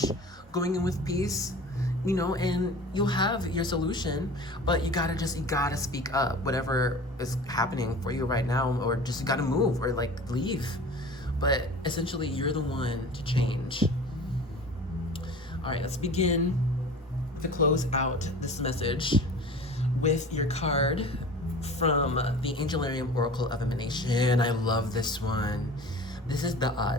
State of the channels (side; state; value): both; normal; correlation 0.39